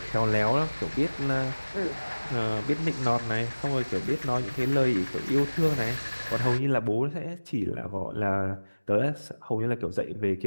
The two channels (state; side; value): inverted; both; correlation -1.00